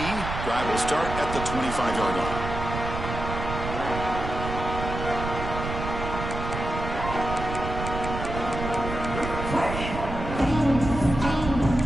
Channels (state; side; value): noise; right; rumble, 6 dB below the sound